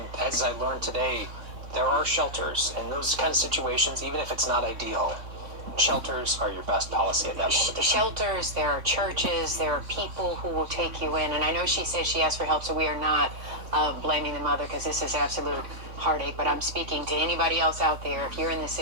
as I learned today, there are shelters in those kind of situations, even if it's not ideal. Shelters are your best policy at that moment. Shelters, there are churches, there are people who will take you in. And I know she said she asked for help, so we are not blaming the mother, because this is absolute heartache. But I'm speaking to anybody else out there. If you're in this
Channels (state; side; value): late; left; 3.6 ms